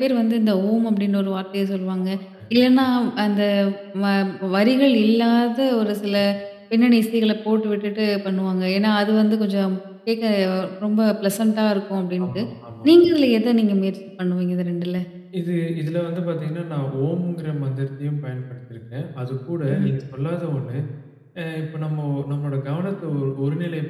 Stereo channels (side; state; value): both; identical; correlation 1.00